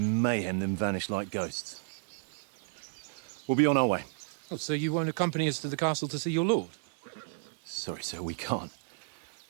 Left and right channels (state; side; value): silent; left; 56 dB below the other